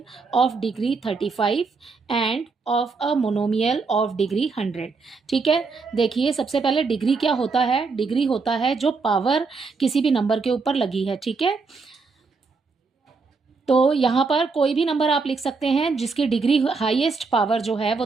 of degree 35 end of a monomial of degree 100। ठीक है, देखिए सबसे पहले डिग्री क्या होता है। डिग्री होता है जो पावर किसी भी नंबर के ऊपर लगी है। ठीक है, तो यहाँ पर कोई भी नंबर आप लिख सकते हैं जिसकी डिग्री हाईएस्ट पावर जो है वो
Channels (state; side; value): quieter; left; 4.5 dB